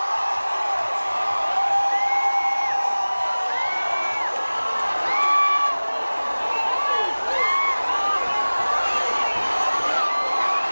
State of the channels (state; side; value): inverted; both; correlation -1.00